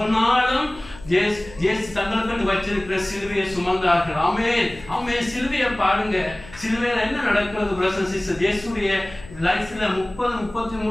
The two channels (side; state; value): left; noise; hum, 19 dB below the sound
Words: நாளும் இயேசு தங்களுக்கு வச்சிருக்கிற சிலுவையை சுமந்தார்கள். சிலுவையை பாருங்க. சிலுவையில என்ன நடக்கிறது பிரதர்ஸ் சிஸ்டர்ஸ்? இயேசுடைய லைஃப்ல